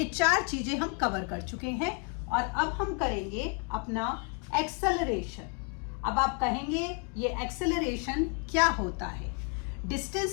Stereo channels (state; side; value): quieter; right; 35.7 dB